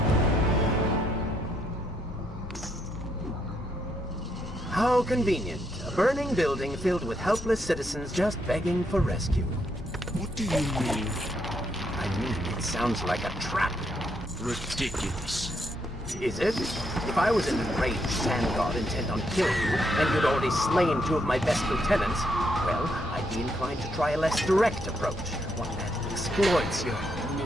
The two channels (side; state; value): both; normal; correlation 0.76